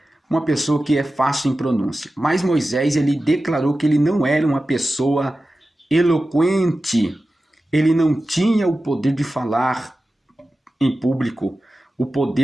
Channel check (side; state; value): both; normal; correlation 0.94